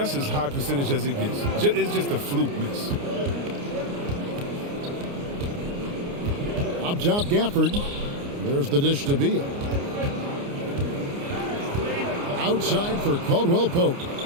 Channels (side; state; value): left; late; 29 ms